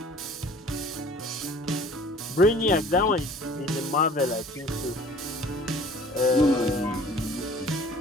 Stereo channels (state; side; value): normal; both; correlation 0.49